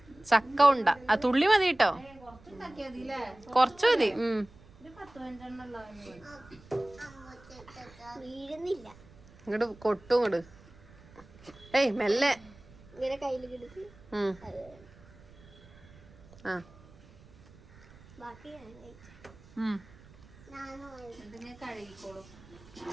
ചക്ക ഉണ്ട ആ തുള്ളി മതി കേട്ടോ, കൊറച്ചു മതി. ഇങ്ങോട്ട് കൊട്ടും ഇങ്ങോട്ട്. ഏയ് മെല്ലെ. ആ കഴുകിക്കോളും.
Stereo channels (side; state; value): right; noise; rumble, 23 dB below the sound